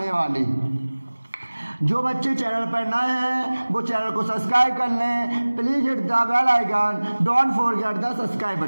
वाली। जो बच्चे चैनल पर नए हैं वो चैनल को सब्सक्राइब कर लें, please hit the bell icon, don't forget the subscribe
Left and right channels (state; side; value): inverted; both; correlation -1.00